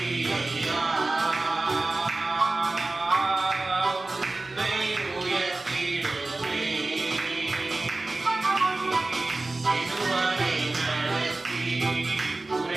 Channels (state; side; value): quieter; left; 3.1 dB